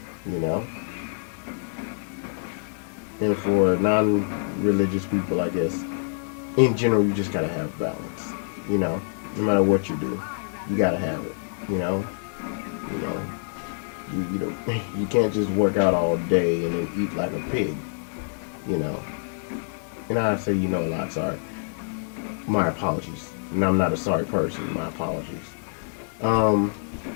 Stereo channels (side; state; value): right; silent; digital silence